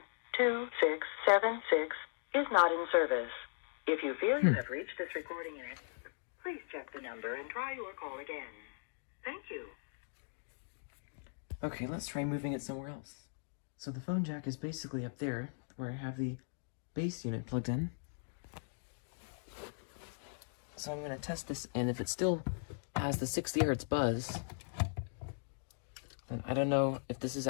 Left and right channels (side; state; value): right; silent; digital silence